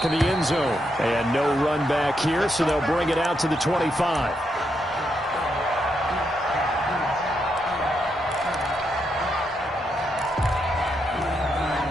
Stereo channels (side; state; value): both; normal; correlation 0.81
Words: of the end zone. And no run back here, so they'll bring it out to the 25.